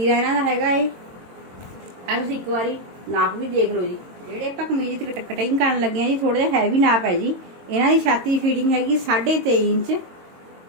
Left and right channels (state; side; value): late; left; 22 ms